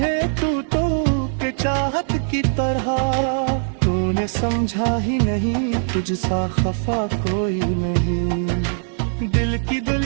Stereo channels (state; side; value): silent; left; digital silence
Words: तू तो के चाहत की तरह, तूने समझा ही नहीं तुझसा खफा कोई नहीं। दिल की